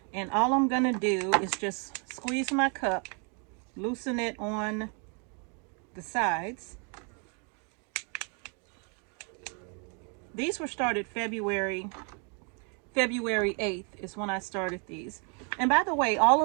And all I'm going to do is just squeeze my cup, loosen it on the sides. These were started February 8th is when I started these. And by the way, all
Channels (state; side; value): quieter; left; 37.5 dB